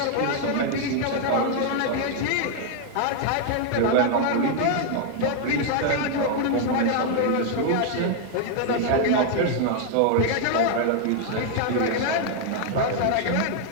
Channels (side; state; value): both; different; correlation 0.00